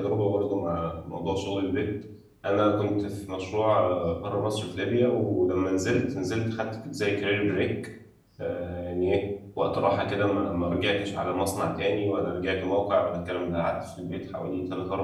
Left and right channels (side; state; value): both; identical; correlation 1.00